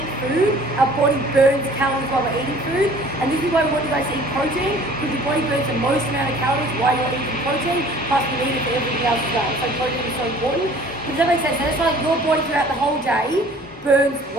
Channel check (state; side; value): normal; both; correlation 0.51